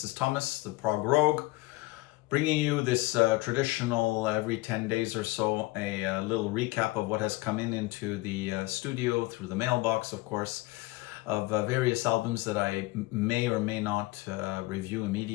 is Thomas, the ProgRogue, bringing you this traditional every 10 days or so, a little recap of what has come into the studio through the mailbox, of course, of various albums that I may or may not review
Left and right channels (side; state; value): right; quieter; 20.9 dB